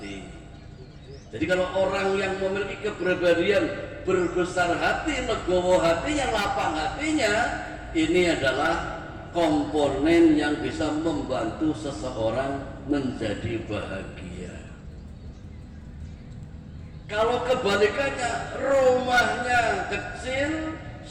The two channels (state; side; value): identical; both; correlation 1.00